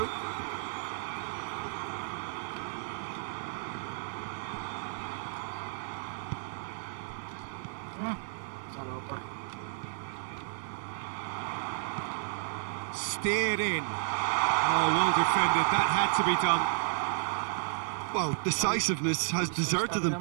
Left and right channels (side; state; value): left; silent; 56 dB below the other